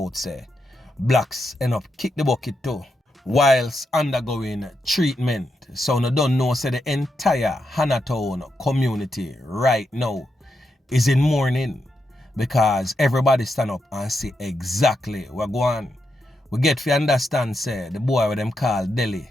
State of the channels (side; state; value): both; normal; correlation 0.84